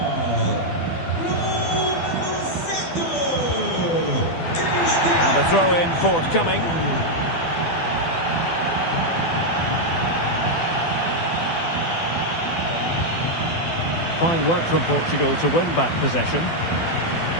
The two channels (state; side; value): late; right; 12 ms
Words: And a throw-in forthcoming. Fine work from Portugal to win back possession.